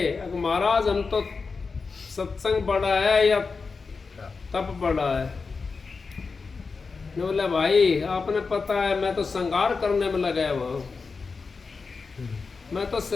महाराज हम तो सत्संग बड़ा है या तप बड़ा है। बोले भाई आपने पता है मैं तो संगार करने में लगा हुआ हूँ, मैं तो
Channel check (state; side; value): quieter; right; 4.6 dB